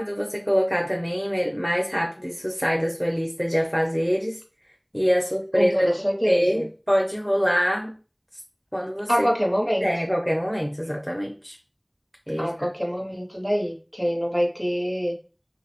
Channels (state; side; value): identical; both; correlation 1.00